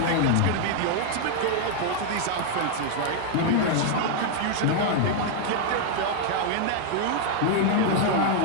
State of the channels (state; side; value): different; both; correlation 0.00